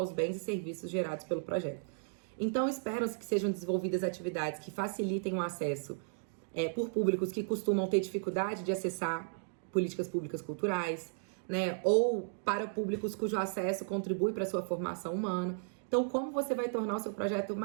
bens e serviços gerados pelo projeto. Então, espera-se que sejam desenvolvidas atividades que facilitem o acesso por públicos que costumam ter dificuldade de acessar políticas públicas culturais, né? Ou para públicos cujo acesso contribui para a sua formação humana. Então, como você vai tornar o seu projeto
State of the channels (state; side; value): silent; left; digital silence